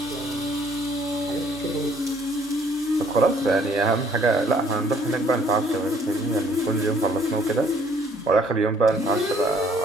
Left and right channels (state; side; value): normal; both; correlation 0.61